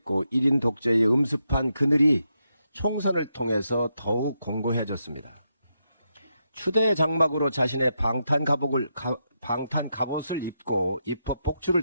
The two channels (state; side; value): inverted; both; correlation -0.83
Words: 1인 독재의 음습한 그늘이 총선을 통해서 더욱 공고해졌습니다. 추대의 장막으로 자신의 방탄 갑옷을 입고 입법